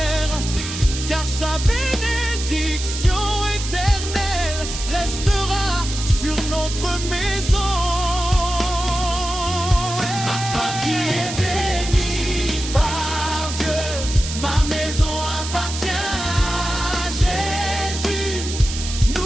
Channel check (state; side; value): noise; right; hiss, 8 dB below the sound